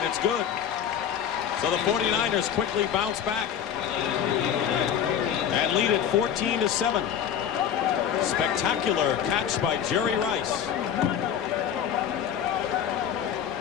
it's good. So the 49ers quickly bounce back and lead it 14-7. Spectacular catch by Jerry Rice.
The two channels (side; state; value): right; quieter; 9.0 dB